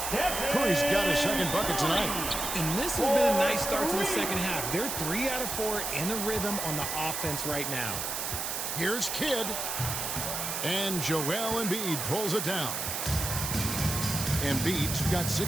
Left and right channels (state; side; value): noise; right; hiss, 3 dB below the sound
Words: Curry's got his second bucket tonight. And this has been a nice start to the second half. They're 3 out of 4 in a rhythm on the offense right now. Here's Kidd. And Joel Embiid pulls it down. Embiid's got